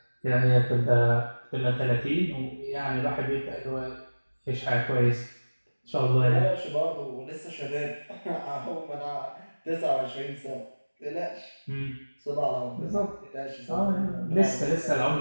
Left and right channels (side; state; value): both; inverted; correlation -1.00